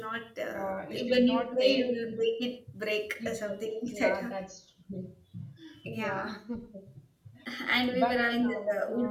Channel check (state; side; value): identical; both; correlation 1.00